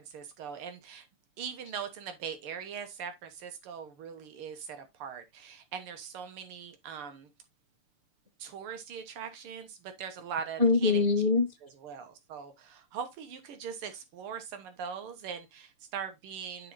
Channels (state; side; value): late; left; 6.7 ms